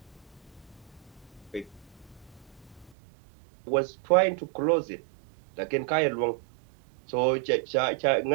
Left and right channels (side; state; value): left; drops out; at 3.0 s